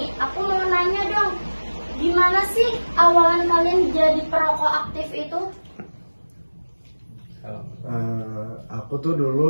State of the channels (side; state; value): both; inverted; correlation -1.00